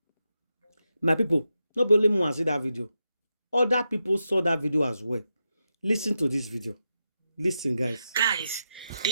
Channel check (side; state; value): both; inverted; correlation -0.87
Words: My people, not only me want to see that video. Other people saw that video as well. Listen to this video. Listen, guys. Guys,